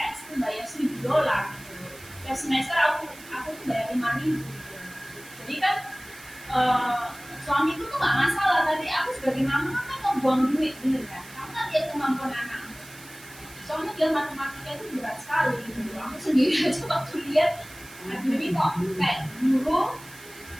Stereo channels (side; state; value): right; noise; hiss, 19 dB below the sound